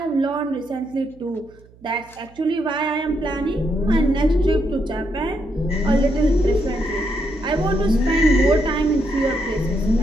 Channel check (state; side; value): noise; right; hum, 26 dB below the sound